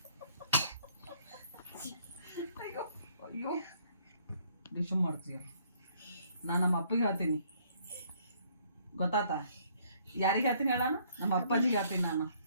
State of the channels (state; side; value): inverted; both; correlation -0.64